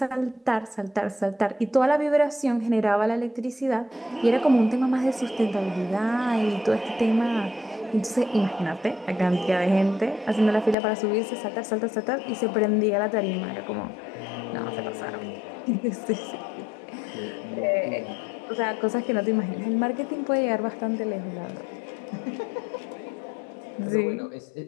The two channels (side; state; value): right; drops out; at 10.8 s